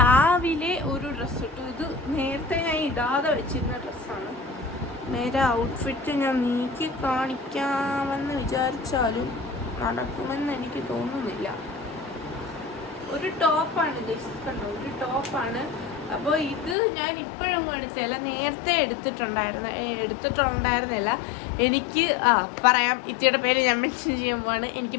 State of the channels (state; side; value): drops out; right; at 16.8 s